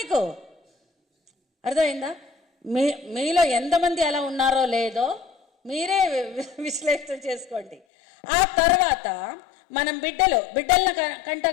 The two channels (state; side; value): drops out; right; at 7.8 s